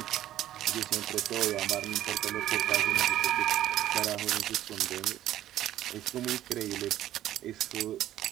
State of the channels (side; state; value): left; quieter; 12.9 dB